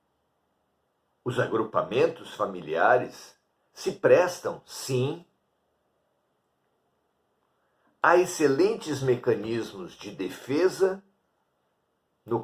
os agrupamentos familiares se prestam, sim, a excelentes mecanismos de defesa,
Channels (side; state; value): both; identical; correlation 1.00